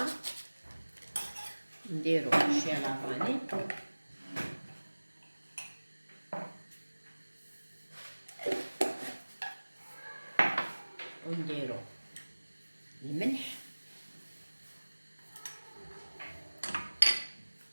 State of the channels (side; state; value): both; inverted; correlation -1.00